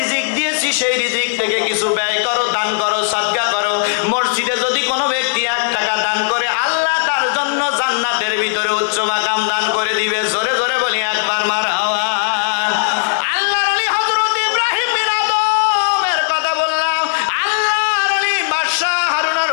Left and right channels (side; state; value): right; silent; digital silence